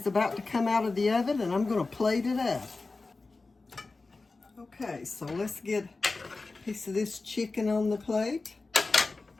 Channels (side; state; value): right; quieter; 3.6 dB